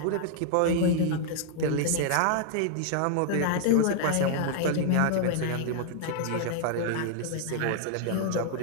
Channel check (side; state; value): both; different; correlation 0.00